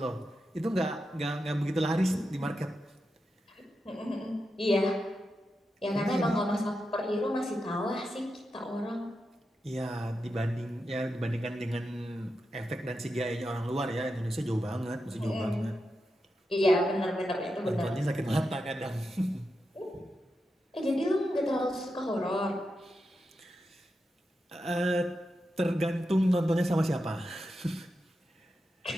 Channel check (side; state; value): both; normal; correlation 0.88